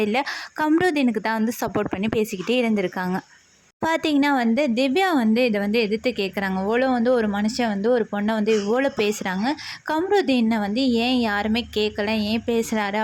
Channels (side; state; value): both; identical; correlation 1.00